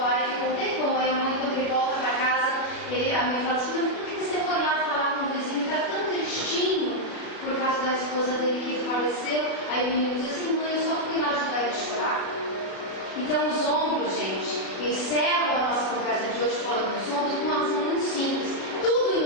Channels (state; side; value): late; right; 36 ms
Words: e ficou um tempão. Aí a mãe, quando ele volta para casa, a mãe fala assim: por que você foi lá falar com o vizinho? Está tão tristinho por causa da esposa dele que faleceu. Aí o menino diz assim: mãe, eu só fui lá ajudar ele a chorar. Então os ombros, gente, encerram a nossa conversa de hoje falando dos ombros de uma razão muito simples. Tudo em